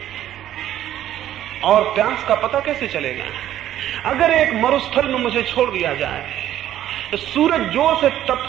और प्यास का पता कैसे चलेगा? अगर एक मरुस्थल में मुझे छोड़ दिया जाए, तो सूरज जोर से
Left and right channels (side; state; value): left; quieter; 12.2 dB